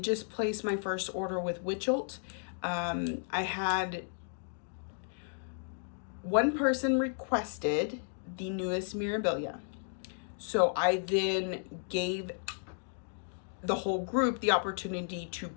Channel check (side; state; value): right; silent; digital silence